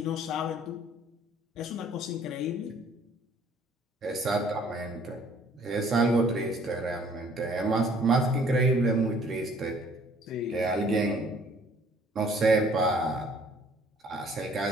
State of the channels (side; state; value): both; normal; correlation 0.58